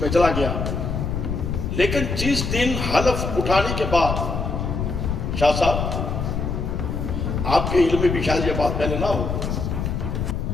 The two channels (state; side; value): noise; left; rumble, 2 dB below the sound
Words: میں چلا گیا۔ لیکن جس دن حلف اٹھانے کے بعد، شاہ صاحب آپ کے علم میں بھی شاید یہ بات پہلے نہ ہو،